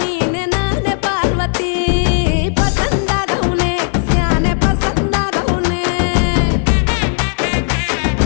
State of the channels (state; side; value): silent; right; 58 dB below the other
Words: ನಾನೇ ಪಾರ್ವತಿ ಪಸಂದಾಗವ್ನೆ ಸ್ಯಾನೆ ಪಸಂದಾಗವ್ನೆ